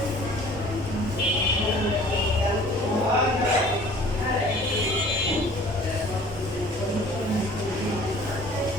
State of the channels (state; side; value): normal; both; correlation 0.50